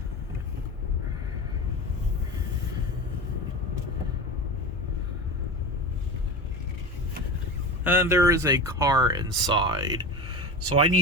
And there is a car inside, so I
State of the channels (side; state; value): both; normal; correlation 0.27